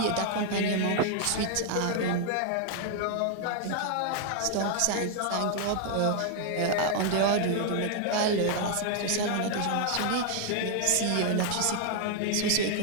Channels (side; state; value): both; different; correlation 0.00